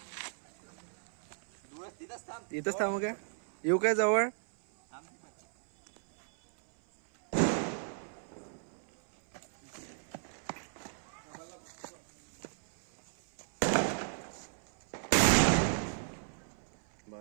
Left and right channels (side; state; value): left; silent; 54 dB below the other